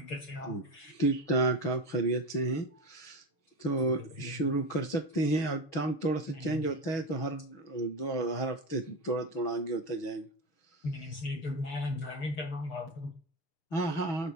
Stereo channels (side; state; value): right; late; 6.7 ms